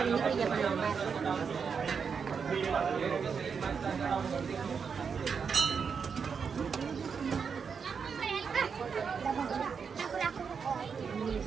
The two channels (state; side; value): quieter; left; 6.1 dB